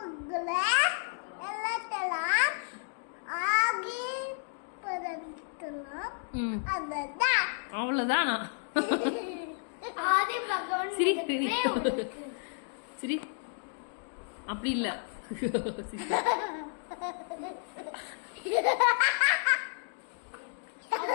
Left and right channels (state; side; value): silent; right; 57 dB below the other